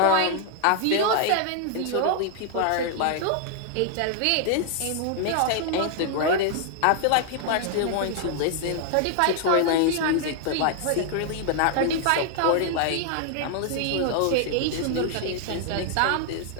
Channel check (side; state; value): both; different; correlation 0.00